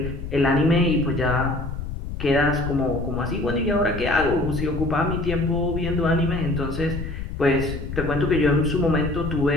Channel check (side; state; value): left; noise; rumble, 7 dB below the sound